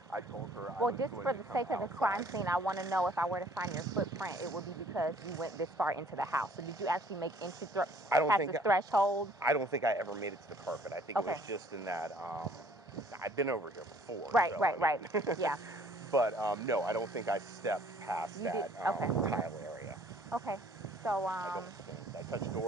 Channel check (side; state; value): both; normal; correlation 0.57